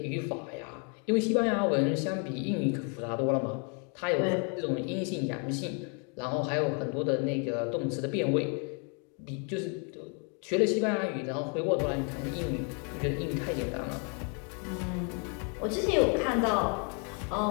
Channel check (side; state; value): right; quieter; 37.7 dB